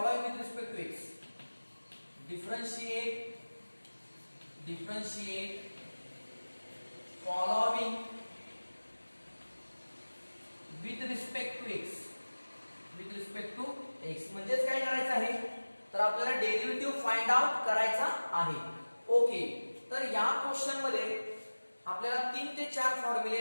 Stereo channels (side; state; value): both; inverted; correlation -1.00